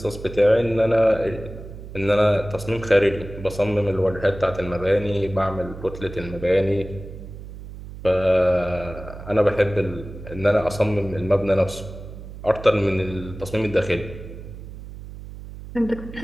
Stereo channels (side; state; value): right; noise; hum, 13 dB below the sound